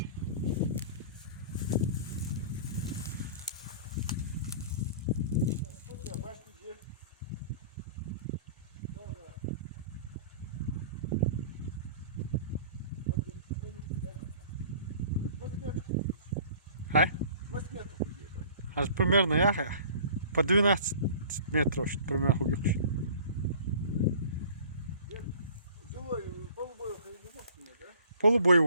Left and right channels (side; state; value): both; inverted; correlation -0.46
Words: А? Аж примерно я по 12 метров, примерно хугивший.